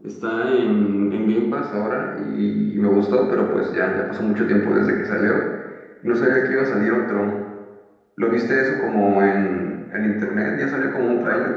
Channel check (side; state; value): both; identical; correlation 1.00